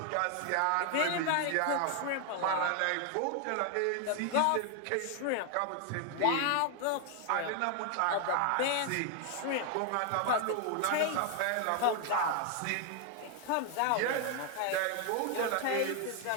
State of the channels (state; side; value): different; both; correlation 0.00